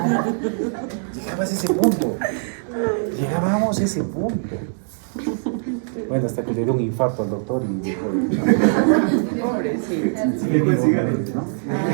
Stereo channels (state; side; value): silent; left; 61 dB below the other